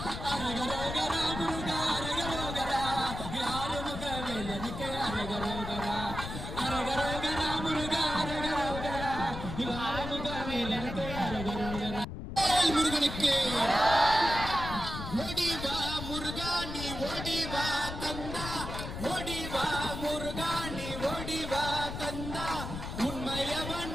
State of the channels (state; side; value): noise; left; rumble, 7 dB below the sound